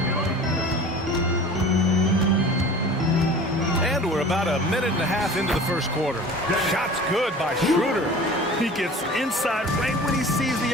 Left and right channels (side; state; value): both; normal; correlation 0.41